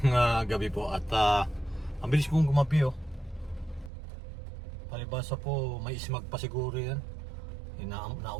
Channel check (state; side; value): drops out; left; at 3.9 s